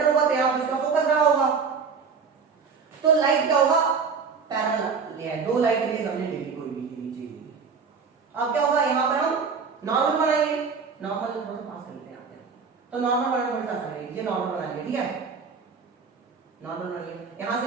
होगा, तो यहाँ पे इसका फोकस रहा होगा, तो लाइट क्या होगा? पैरेलल ले, दो लाइट रेज हमने ले ली, कोई भी नीचे ली। अब क्या होगा, यहाँ पर हम नॉर्मल बनाएंगे, नॉर्मल थोड़ा सा पास कर लेते हैं, तो नॉर्मल बनाना थोड़ा सा आसान है, ये नॉर्मल बना लिया, ठीक है, नॉर्मल बना लिया, यहां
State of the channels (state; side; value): quieter; left; 5.5 dB